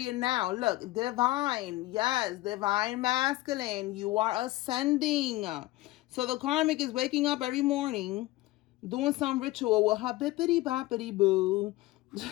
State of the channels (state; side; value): quieter; right; 18.3 dB